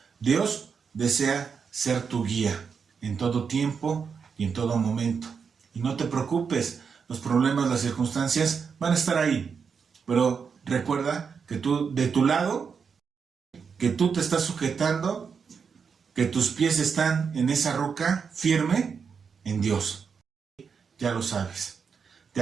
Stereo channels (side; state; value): left; quieter; 6.1 dB